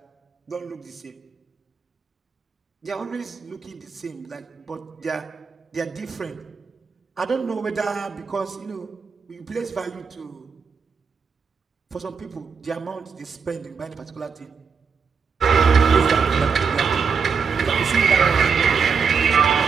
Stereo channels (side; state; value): left; quieter; 5.8 dB